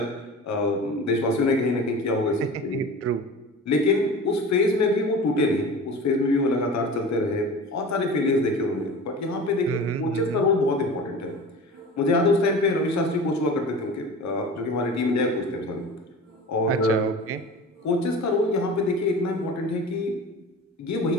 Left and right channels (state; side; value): normal; both; correlation 0.36